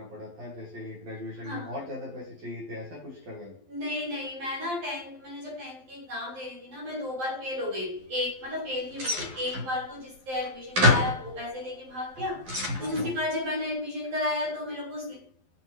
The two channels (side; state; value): left; late; 12 ms